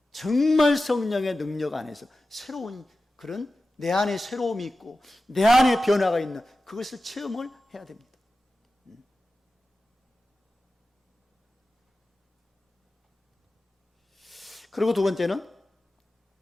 정말 성령의 능력 안에서 새로운 그런 내 안에 새로움이 있고 내 안에 변화가 있는 그것을 체험을 해야 됩니다. 그리고 두 번째는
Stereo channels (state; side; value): normal; both; correlation 0.94